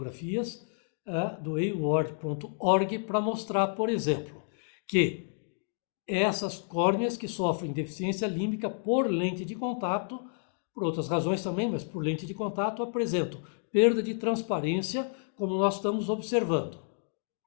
do award.org para mostrar, por exemplo, que essas córneas que sofrem deficiência límbica por lente de contato, por outras razões também, mas por lente de contato, apresentam perda de transparência, como nós estamos observando.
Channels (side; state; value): right; silent; digital silence